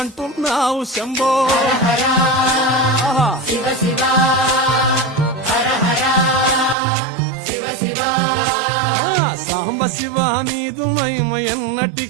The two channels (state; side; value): drops out; left; at 6.8 s